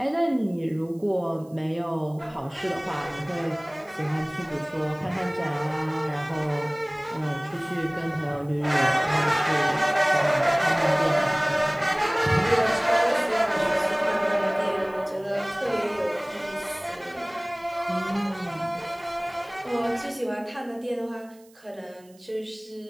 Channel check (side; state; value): right; noise; hiss, 29 dB below the sound